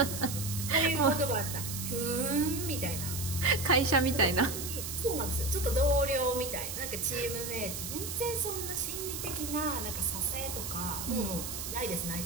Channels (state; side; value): noise; right; hiss, 6 dB below the sound